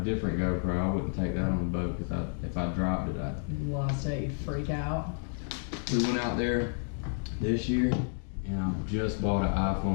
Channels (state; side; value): silent; right; 57 dB below the other